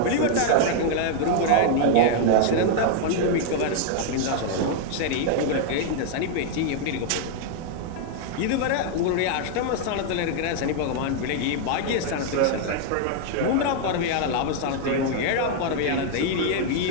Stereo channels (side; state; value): both; different; correlation 0.00